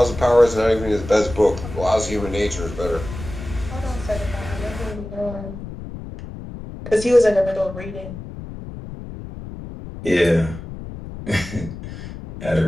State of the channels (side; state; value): left; noise; rumble, 11 dB below the sound